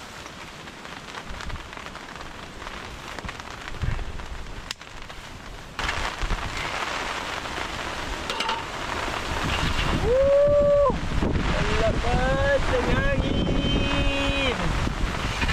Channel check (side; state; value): both; identical; correlation 1.00